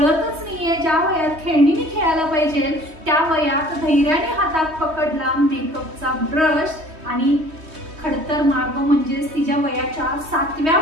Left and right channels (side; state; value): left; late; 3.2 ms